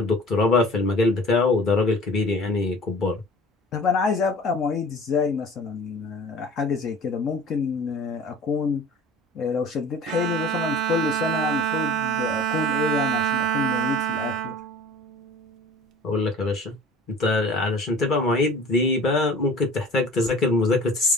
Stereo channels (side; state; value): both; normal; correlation 0.44